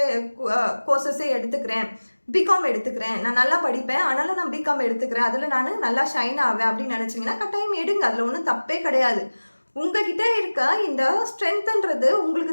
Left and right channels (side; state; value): both; inverted; correlation -1.00